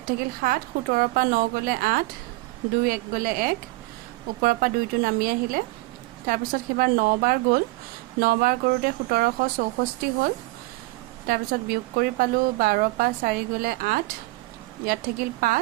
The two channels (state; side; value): quieter; left; 21.6 dB